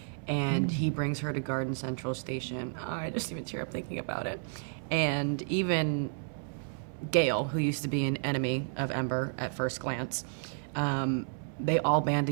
And he brings her to Garden Central Station. I just even tear up thinking about it. And even Gale, who used to be an enemy of Ember at first glance, they all band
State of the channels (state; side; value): silent; left; 57 dB below the other